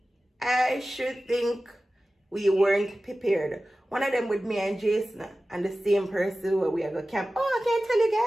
I should think we weren't prepared. One of them with me and Jason and the same person where we are going to camp. Oh, I can't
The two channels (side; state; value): both; normal; correlation 0.96